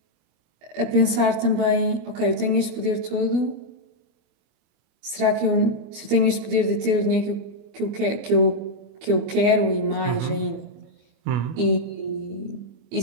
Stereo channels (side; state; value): left; late; 24 ms